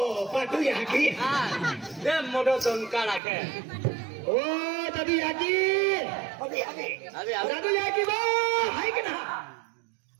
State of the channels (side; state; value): left; drops out; at 3.2 s